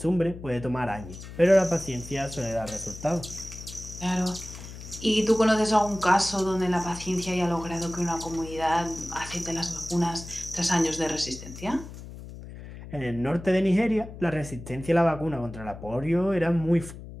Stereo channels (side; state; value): left; noise; hum, 13 dB below the sound